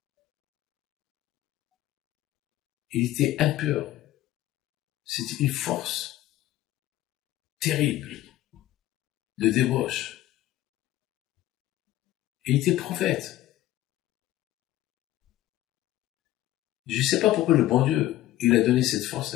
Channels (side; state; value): right; quieter; 14.8 dB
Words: Il était impur. C'était une force terrible de débauche. Il était prophète. Je ne sais pas pourquoi le bon Dieu, il a donné cette force